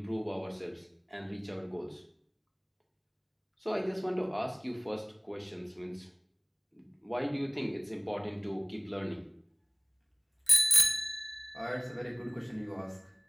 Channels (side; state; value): both; identical; correlation 1.00